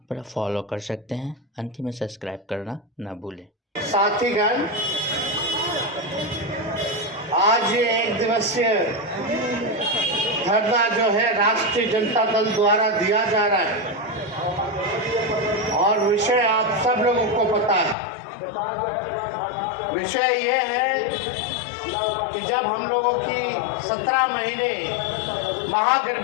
पर फॉलो कर सकते हैं। अंतिम में सब्सक्राइब करना ना भूलें। साथीगण, आज ये एक दिवसीय धरना जो है राष्ट्रीय जनता दल द्वारा दिया जा रहा है और विषय आप सब लोगों को पता है। विषय ये है कि जब हम लोगों की 17 महीने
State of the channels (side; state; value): right; drops out; at 17.9 s